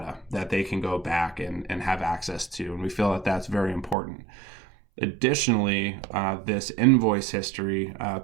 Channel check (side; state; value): left; drops out; at 4.0 s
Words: that they can go back and have access to. And we feel that that's very important. Additionally, this invoice history